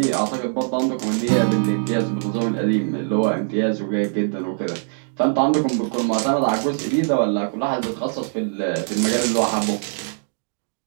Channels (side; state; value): left; silent; digital silence